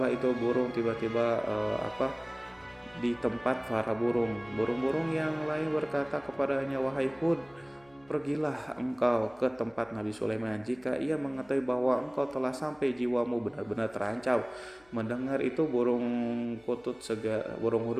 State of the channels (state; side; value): noise; left; hum, 30 dB below the sound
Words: itu burung tiba-tiba di tempat para burung-burung yang lain berkata kepadanya, wahai Hud, pergilah engkau ke tempat Nabi Sulaiman. Jika ia mengetahui bahwa engkau telah sampai, jiwamu benar-benar terancam. Mendengar itu burung hudhud